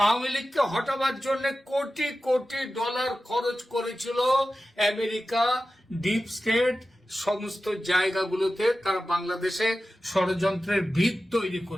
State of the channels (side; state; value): both; normal; correlation 0.94